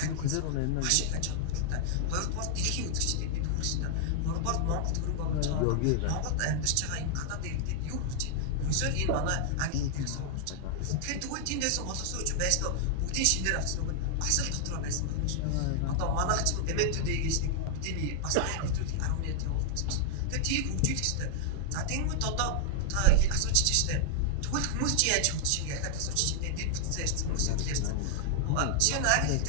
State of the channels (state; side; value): different; both; correlation 0.00